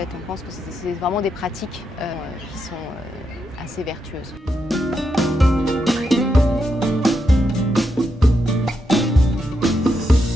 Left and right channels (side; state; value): both; normal; correlation 0.83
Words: on pense que c'est vraiment des pratiques qui sont assez vertueuses.